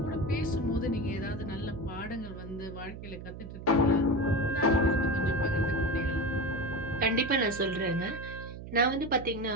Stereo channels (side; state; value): right; noise; hum, 11 dB below the sound